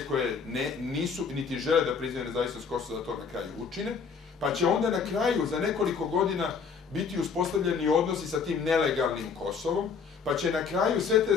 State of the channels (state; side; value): quieter; right; 5.8 dB